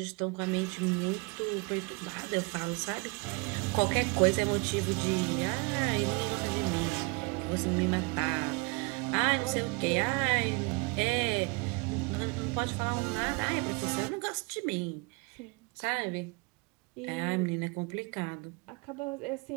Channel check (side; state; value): left; quieter; 30.2 dB